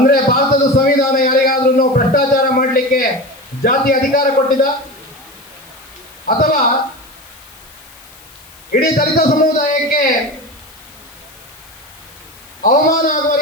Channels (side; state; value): left; noise; hiss, 24 dB below the sound